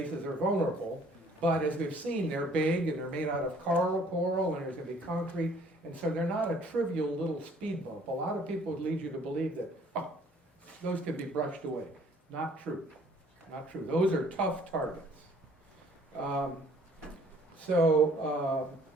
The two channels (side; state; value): both; normal; correlation 0.58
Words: are vulnerable, but as we've seen, they're big and they're made out of coral, and there's going to be concrete, and so they're not a trivial little speed bump. A lot of people would lead you to believe that those can be brushed away. Not true. not true. Those are tough targets. So